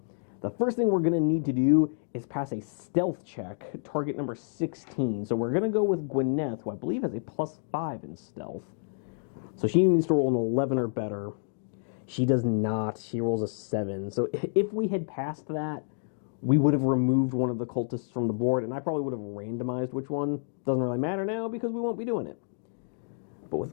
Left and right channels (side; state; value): right; silent; digital silence